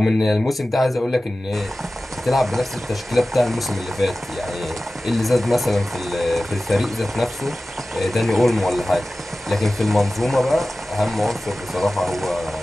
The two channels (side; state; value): both; normal; correlation 0.96